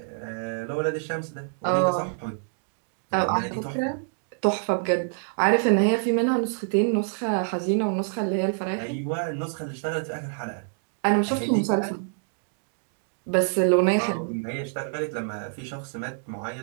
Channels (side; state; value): left; silent; 60 dB below the other